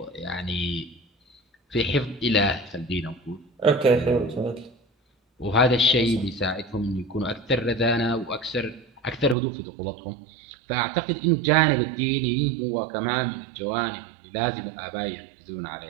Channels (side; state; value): left; drops out; at 9.3 s